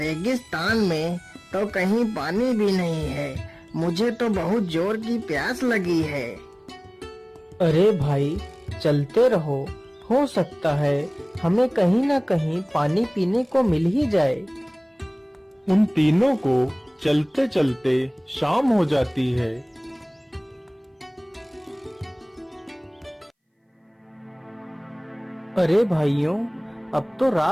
में तो कहीं पानी भी नहीं है। मुझे तो बहुत जोर की प्यास लगी है। अरे भाई, चलते रहो, हो सकता है हमें कहीं ना कहीं पानी पीने को मिल ही जाए। उन तीनों को चलते चलते शाम हो जाती है। अरे भाइयों, अब तो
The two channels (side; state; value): both; identical; correlation 1.00